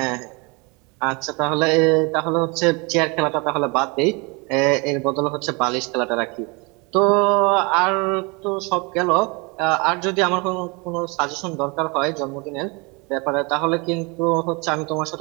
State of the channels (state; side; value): quieter; left; 29.2 dB